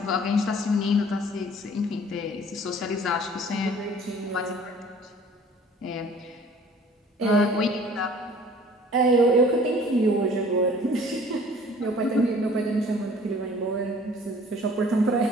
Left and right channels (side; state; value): both; normal; correlation 0.51